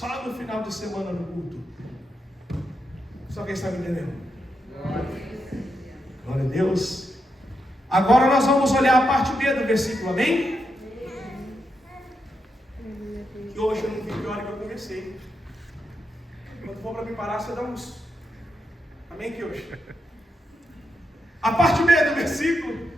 no final de semana no culto. Só quem está me entendendo? Glória a Deus. Agora nós vamos olhar a parte B do versículo, amém? Que hoje eu não vi que hora que eu comecei. Quando for para me parar, você dá uns. Amém, que hoje? A parte B do versículo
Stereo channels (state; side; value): normal; both; correlation 0.84